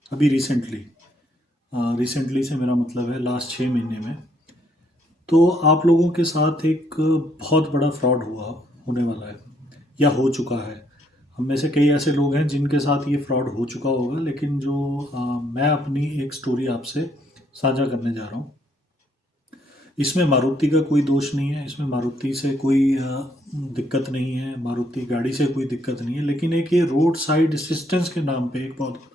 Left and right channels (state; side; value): normal; both; correlation 0.70